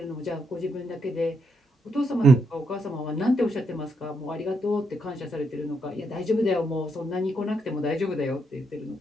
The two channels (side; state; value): both; normal; correlation 0.78